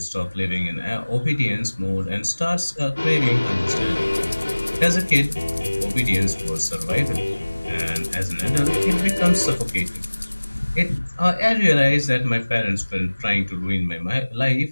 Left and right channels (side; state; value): both; inverted; correlation -1.00